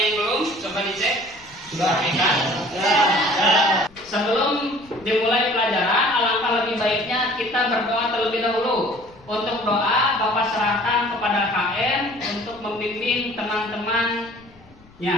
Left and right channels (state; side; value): noise; left; rumble, 26 dB below the sound